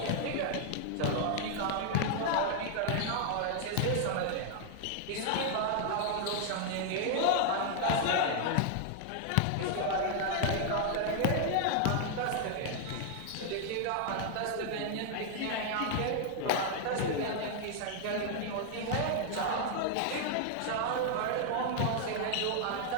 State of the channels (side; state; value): both; different; correlation 0.00